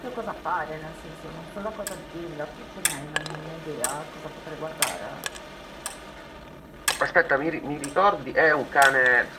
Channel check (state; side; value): identical; both; correlation 1.00